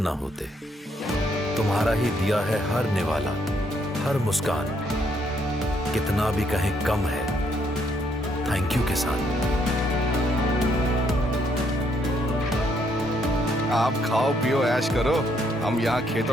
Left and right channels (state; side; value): normal; both; correlation 0.71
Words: ना होते, तुम्हारा ही दिया है हर निवाला, हर मुस्कान, कितना भी कहें कम है। थैंक यू किसान। आप खाओ पियो ऐश करो, हम यहाँ